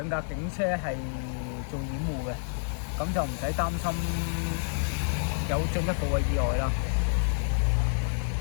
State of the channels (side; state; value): right; silent; digital silence